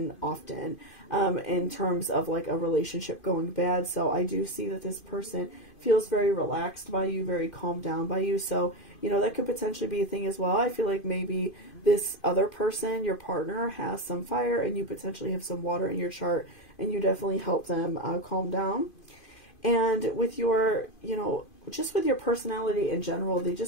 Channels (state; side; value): late; right; 2.5 ms